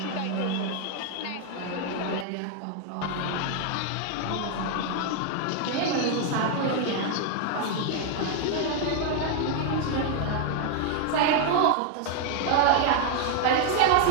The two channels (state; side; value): different; both; correlation 0.00